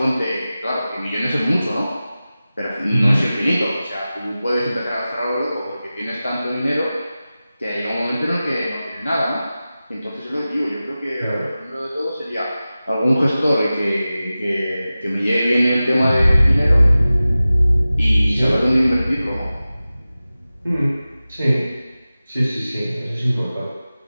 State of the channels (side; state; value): both; inverted; correlation -0.96